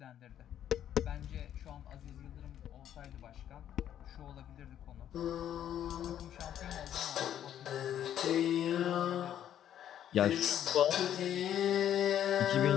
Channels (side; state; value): right; quieter; 10.5 dB